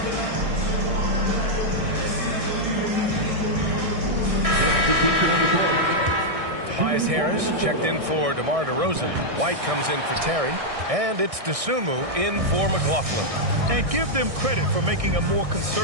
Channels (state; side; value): late; left; 1.6 ms